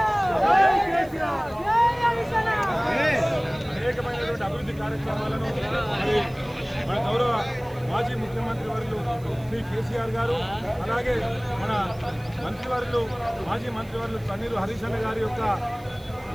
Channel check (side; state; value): right; noise; hiss, 25 dB below the sound